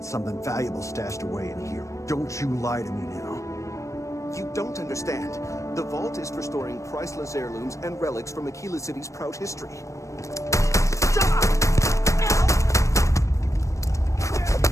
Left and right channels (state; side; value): late; right; 0.15 ms